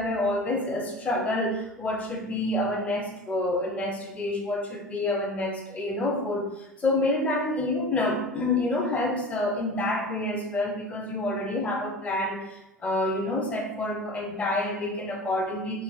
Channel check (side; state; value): both; normal; correlation 0.35